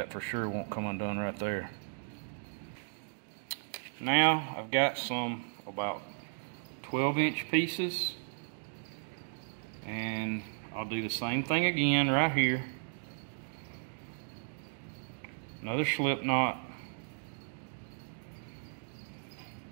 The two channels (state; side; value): silent; left; digital silence